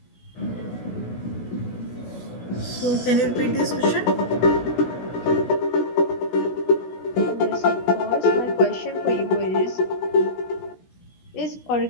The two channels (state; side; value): late; right; 16 ms